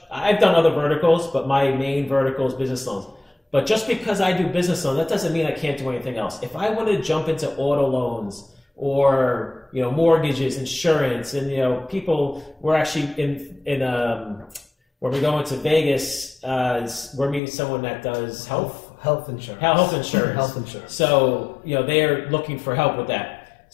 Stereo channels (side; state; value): right; drops out; at 17.4 s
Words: done other verticals, but my main vertical is business loans. But just because I do business loans, that doesn't mean I can't do anything else. If I wanted to jump into auto loans or mortgages, insurance, and people, we're actually in when we go into Vegas, we're meeting someone that does health insurance. Health insurance. Health insurance. So they are looking for help with that.